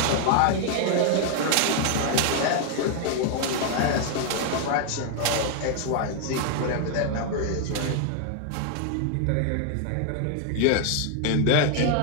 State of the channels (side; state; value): both; different; correlation 0.00